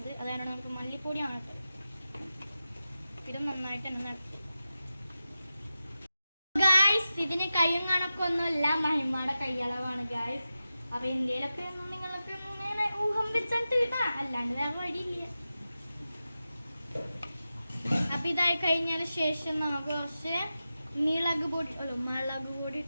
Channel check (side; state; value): both; inverted; correlation -0.92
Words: അതാണ് നമുക്ക് മല്ലിപ്പൊടിയാണ് ഇട്ടത്. ഇതും നന്നായിട്ട് തന്നെ നടത്തി ഗായ്സ്. ഇതിന് കയ്യും കണക്കൊന്നുമില്ല, മഹിമയുടെ കൈയളവാണ് ഗായ്സ്. അപ്പോൾ ഇന്ത്യയിലൊക്കെ നിങ്ങളൊക്കെ ഊഹം വെച്ചിട്ട് കിട്ടാ, അല്ലാണ്ട് വേറെ വഴിയില്ല. അപ്പൊ ഇതായി കഴിഞ്ഞതിന് ശേഷം നമുക്ക് കുറച്ച് മുളക് പൊടി